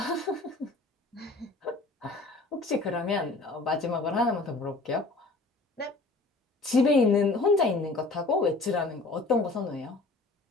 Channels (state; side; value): quieter; right; 3.3 dB